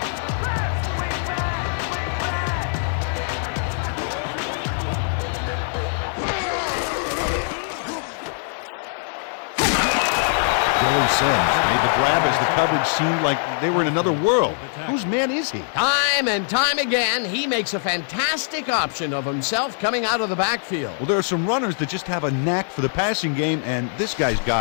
Billy Sims made the grab as the coverage seemed like they were in another world. Whose man is he? Time and time again, he makes a fantastic option of himself coming out of the backfield. Well, there are some runners that just have a knack for the passing game, and this guy's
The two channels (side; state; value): right; silent; digital silence